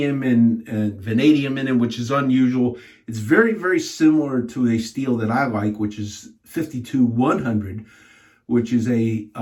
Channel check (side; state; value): both; identical; correlation 1.00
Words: and vanadium in it, which is unusual. It's very, very similar to a steel that I like, which is 52-100, which is a